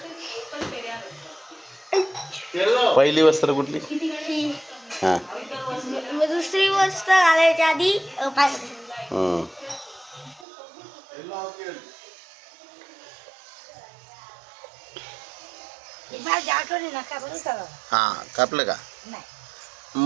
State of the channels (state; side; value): drops out; left; at 10.5 s